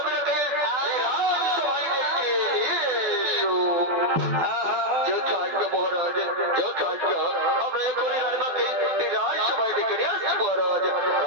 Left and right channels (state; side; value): late; left; 12 ms